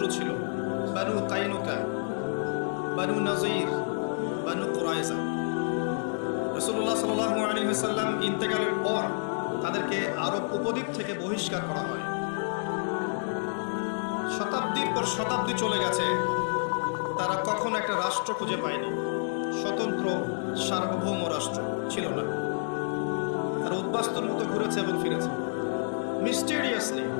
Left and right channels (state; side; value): silent; right; 59 dB below the other